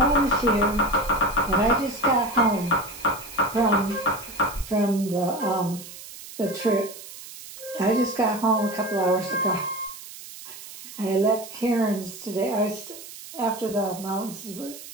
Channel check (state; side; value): noise; right; hiss, 14 dB below the sound